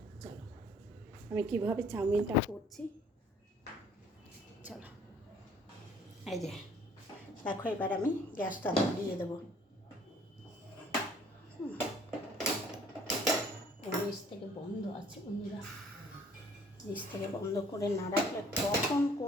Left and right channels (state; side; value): normal; both; correlation 0.57